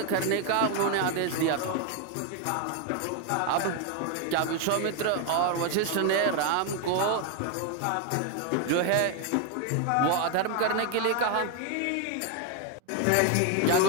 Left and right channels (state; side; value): different; both; correlation 0.01